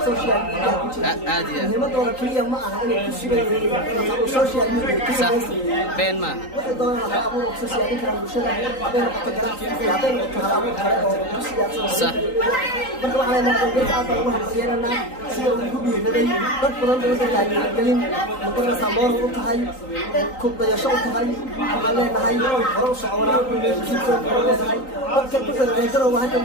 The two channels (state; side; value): late; right; 3.9 ms